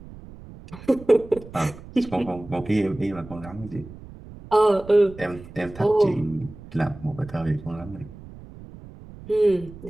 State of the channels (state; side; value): noise; right; rumble, 17 dB below the sound